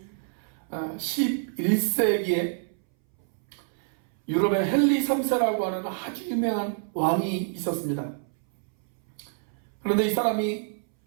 11세기에 유럽의 헨리 3세라고 하는 아주 유명한 왕이 있었습니다. 그런데 이 사람이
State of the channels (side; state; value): left; silent; 60 dB below the other